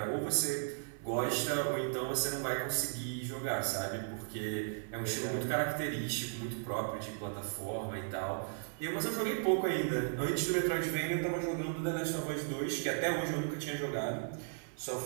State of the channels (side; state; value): left; silent; 54 dB below the other